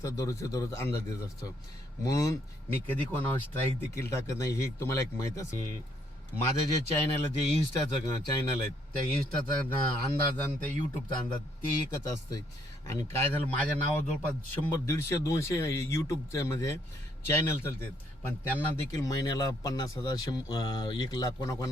दररोज अंदाज देत असतो म्हणून मी कधी कोणावर स्ट्राईक देखील टाकत नाही. हे तुम्हाला एक माहीत असेल. माझं जे चॅनल आहे जे इन्स्टाचं चॅनल आहे त्या इन्स्टाचा अंदाज आणि त्या यूट्यूबचा अंदाज ते एकच असतं. आणि काय झालं माझ्या नावावर जवळपास 100-150-200 यूट्यूबचे म्हणजे चॅनल चालतात पण त्यांना देखील महिन्याला 50,000 1 लाख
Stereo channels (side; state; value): both; normal; correlation 0.70